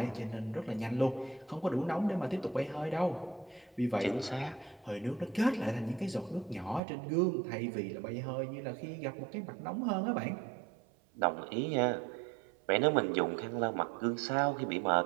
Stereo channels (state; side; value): drops out; left; at 6.8 s